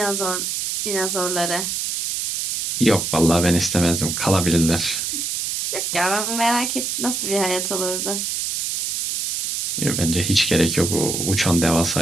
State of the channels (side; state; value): right; noise; hiss, 2 dB below the sound